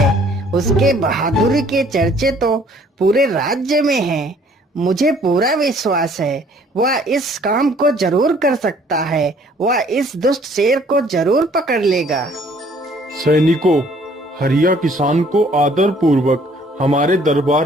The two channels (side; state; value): both; normal; correlation 0.59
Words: उसके बहादुरी के चर्चे तो पूरे राज्य में हैं। मुझे पूरा विश्वास है वह इस काम को जरूर कर सकता है। वह इस दुष्ट शेर को जरूर पकड़ लेगा। सैनिकों, हरिया किसान को आदर पूर्वक हमारे